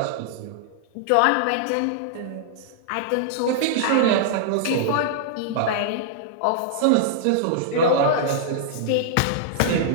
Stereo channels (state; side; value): different; both; correlation -0.01